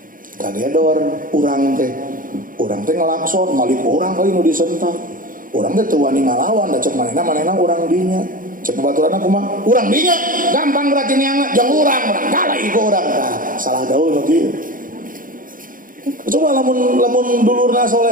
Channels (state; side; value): late; left; 0.40 ms